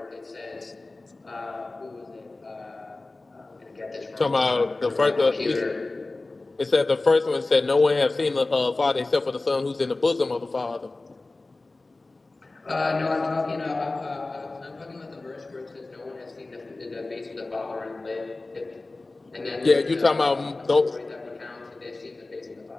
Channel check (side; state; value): right; quieter; 3.2 dB